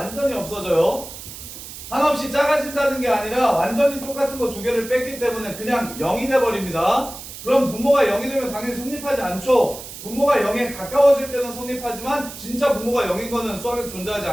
없어져요. 한없이 작아진다는 게 아니라 완전히 똑같은 거 두 개를 뺐기 때문에 그냥 0이 돼버립니다. 그럼 분모가 0이 되면 당연히 성립하지 않죠. 분모가 0에 가까워질 때는 성립하지만 진짜 분모가 0인 거는 수학에서 존재하지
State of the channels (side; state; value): right; noise; hiss, 12 dB below the sound